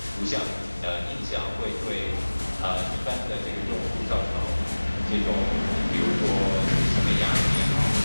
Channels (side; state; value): both; inverted; correlation -1.00